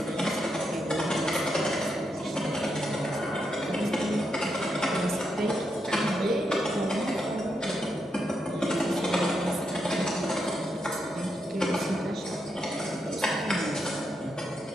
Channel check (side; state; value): both; normal; correlation 0.82